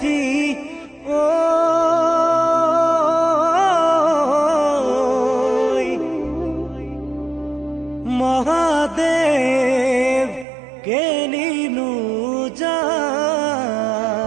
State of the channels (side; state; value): left; drops out; at 10.5 s